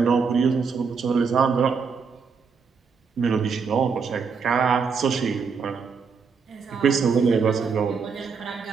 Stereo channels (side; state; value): left; quieter; 5.5 dB